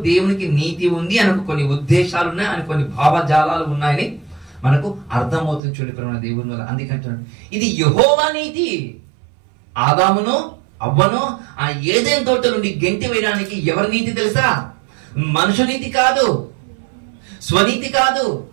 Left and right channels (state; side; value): drops out; left; at 5.6 s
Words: దేవునికి నీతి ఉంది అని కొన్ని ఉద్దేశాలు ఉన్నాయి, అని కొన్ని భావజాలాలు ఉన్నాయని మనకు అర్థమవుతుంది. చూడండి ప్రేమ దేవుని వల్ల. అందుకంటున్నాడు ఇది యెహోవా నీతి. ఆదామును అవ్వను ఆ ఏదైనా తోట నుండి గెంటి వేయడానికి ఎవరి నీతి తెలుసా? మనుషు నీతి కాదు, స్వనీతి కాదు,